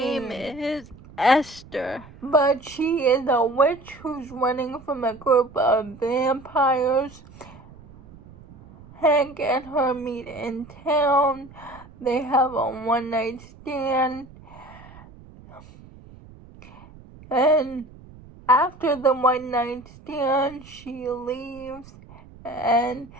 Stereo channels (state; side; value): noise; right; rumble, 21 dB below the sound